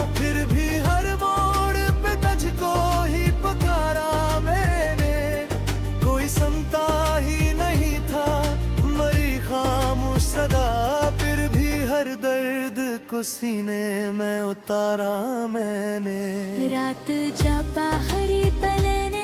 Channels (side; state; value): both; identical; correlation 1.00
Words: फिर भी हर मोड़ पे तुझको ही पुकारा मैंने। कोई सुनता ही नहीं था, मरी खामोश सदा, फिर भी हर दर्द को सीने में उतारा मैंने। रात जब बाहरी पलने